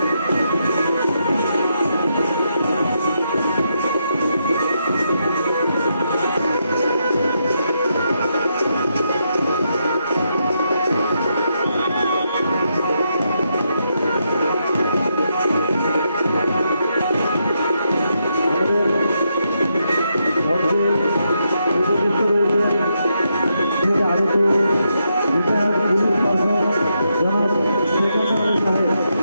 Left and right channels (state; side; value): inverted; both; correlation -0.81